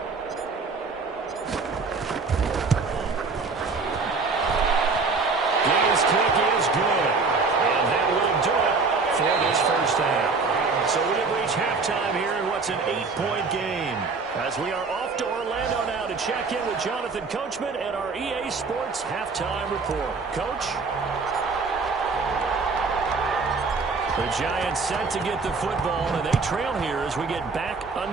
His kick is good. And that will do it for this first half. So we have reached halftime here in what's an 8-point game. As we are off to Orlando now to check in with Jonathan Coachman and our EA Sports Halftime Report. Coach? The Giants set to get the football, and they trail here as we get back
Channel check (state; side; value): quieter; left; 4.4 dB